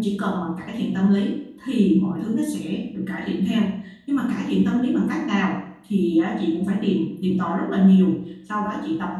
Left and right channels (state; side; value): identical; both; correlation 1.00